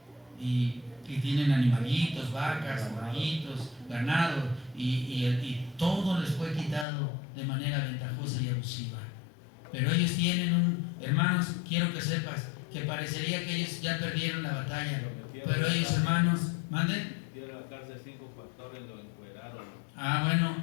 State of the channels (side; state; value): right; drops out; at 6.9 s